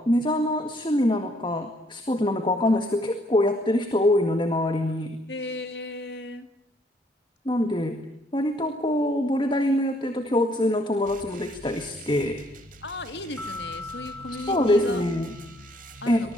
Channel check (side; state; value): both; normal; correlation 0.66